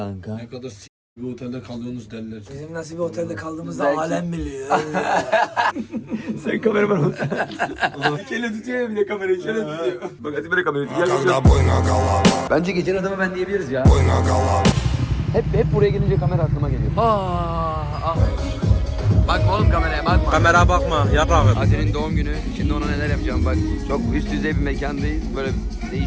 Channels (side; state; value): both; identical; correlation 1.00